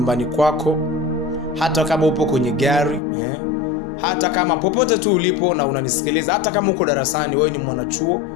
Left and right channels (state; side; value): drops out; right; at 3.0 s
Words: kwako, hata kama upo kwenye gari, hata kama popote tu ulipo na unanisikiliza, hata kama uko darasani, wewe ni mwanachuo,